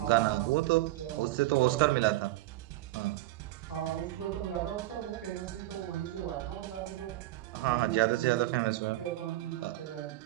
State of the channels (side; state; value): left; quieter; 16.6 dB